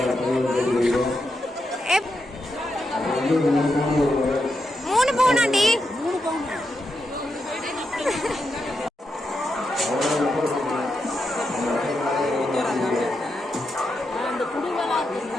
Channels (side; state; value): both; normal; correlation 0.85